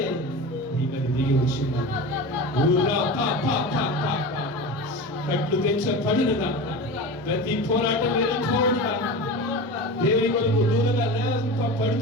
నీ మీద దిగి వచ్చినాడు. కట్లు తెచ్చబడినగా ప్రతి పోరాటం వెళ్ళిపోవుగా దేవుని కొరకు దూరంగా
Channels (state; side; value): normal; both; correlation 0.29